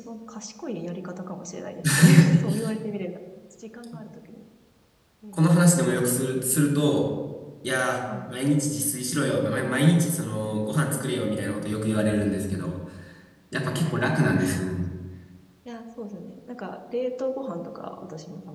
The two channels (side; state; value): both; identical; correlation 1.00